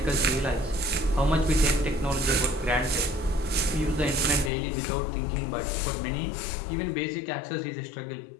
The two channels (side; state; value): right; drops out; at 4.5 s